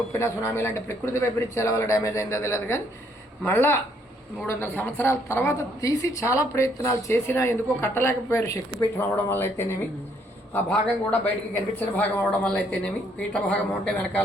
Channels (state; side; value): normal; both; correlation 0.68